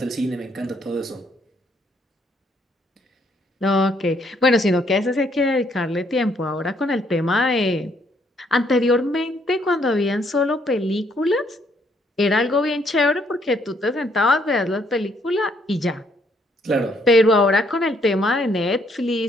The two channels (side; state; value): both; normal; correlation 0.69